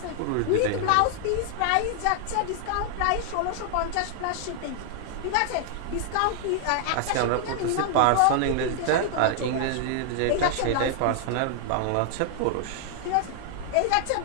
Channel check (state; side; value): different; both; correlation 0.00